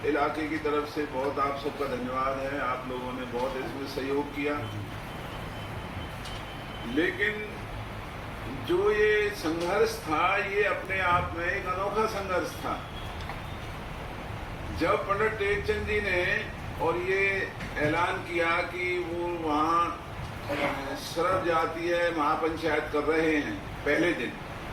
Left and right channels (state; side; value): identical; both; correlation 1.00